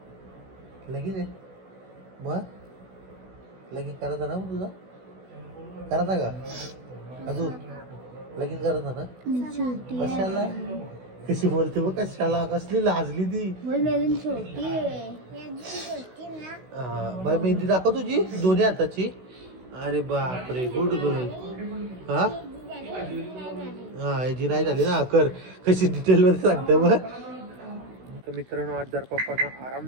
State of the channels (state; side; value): late; left; 16 ms